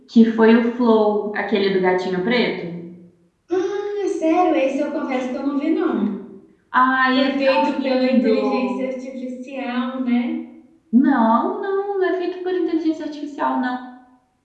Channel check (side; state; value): both; identical; correlation 1.00